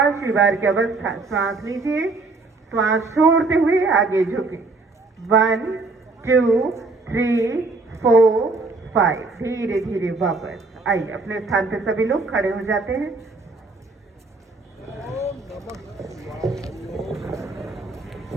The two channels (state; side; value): quieter; left; 3.6 dB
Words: बार की अवस्था, श्वास लीजिए, श्वास छोड़ते हुए आगे झुके। 1 2 3 4 5। धीरे धीरे वापस आइए। अपने स्थान पर सभी लोग खड़े हो जाते हैं।